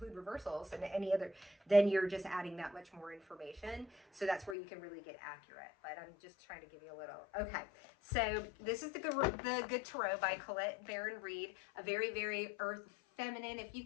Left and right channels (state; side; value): drops out; right; at 4.5 s